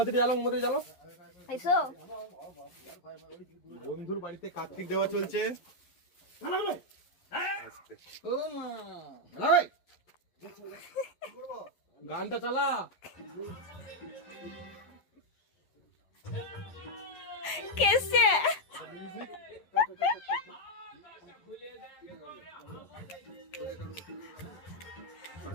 জ্বালো, মোমবাতি জ্বালো। এসো বন্ধুর বাড়িতে কার্তিক দেওয়া চলছে। গানটা চালা। কেসে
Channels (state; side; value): late; right; 11 ms